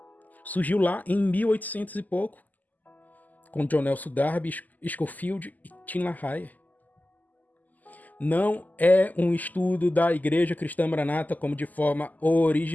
Surgiu lá em 1800 e pouco, com John Nelson Darby, Scofield e Tim LaHaye. Não é um estudo da Igreja Cristã Maranata como de forma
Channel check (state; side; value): late; right; 0.081 ms